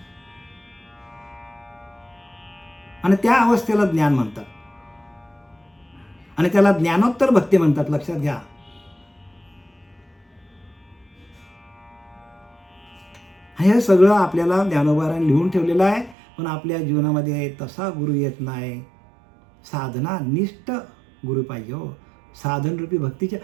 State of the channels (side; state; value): left; drops out; at 16.2 s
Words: आणि त्या अवस्थेला ज्ञान म्हणतात, आणि त्याला ज्ञानोत्तर भक्ती म्हणतात. लक्षात घ्या. हे सगळं आपल्याला ज्ञानोबारांनी लिहून ठेवलेलं आहे, पण आपल्या जीवनामध्ये तसा गुरु येत नाही. साधना निष्ठ गुरु पाहिजे. हो, साधनरूपी भक्तीच्या